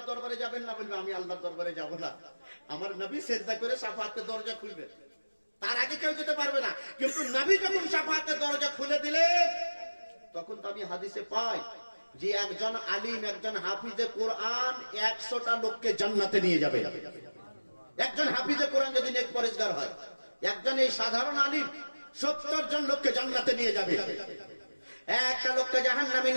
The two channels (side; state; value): both; inverted; correlation -1.00